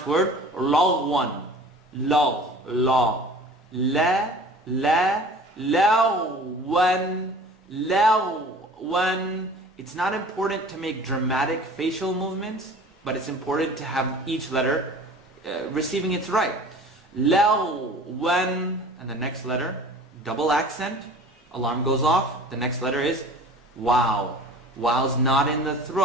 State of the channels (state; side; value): normal; both; correlation 0.44